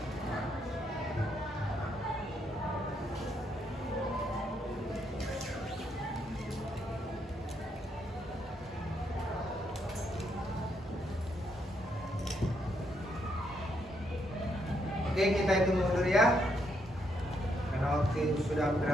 Oke, kita hitung mundur ya. Karena waktu itu sudah hampir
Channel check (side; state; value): both; normal; correlation 0.76